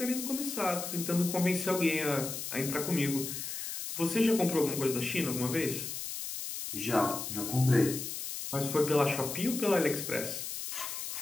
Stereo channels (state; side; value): noise; left; hiss, 6 dB below the sound